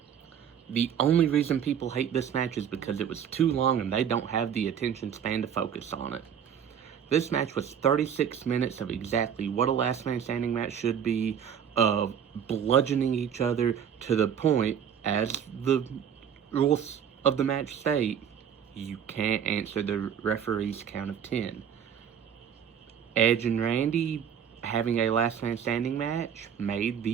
The only reason people hate this match is because it was too long and they don't have the attention span to focus on it. This match was 36 minutes of exactly what a last man standing match should be, of bludgeoning each other to the point, as the rules of the match state, you can't answer the referee's count of 10. Edge and Randy having a last man standing match made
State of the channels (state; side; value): quieter; left; 8.3 dB